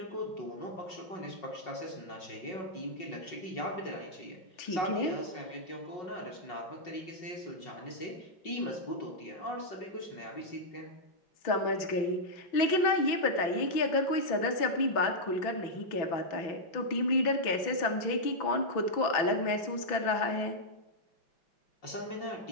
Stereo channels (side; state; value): right; late; 6.0 ms